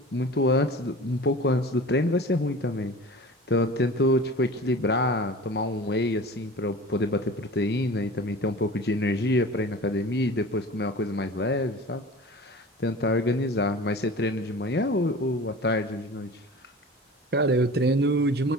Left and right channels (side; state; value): both; normal; correlation 0.38